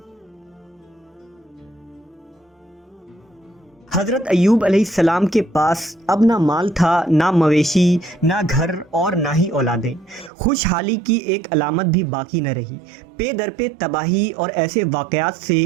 حضرت ایوب علیہ السلام کے پاس اب نہ مال تھا، نہ مویشی، نہ گھر اور نہ ہی اولادیں۔ خوشحالی کی ایک علامت بھی باقی نہ رہی۔ پے در پہ تباہی اور ایسے واقعات سے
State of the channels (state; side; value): drops out; left; at 10.3 s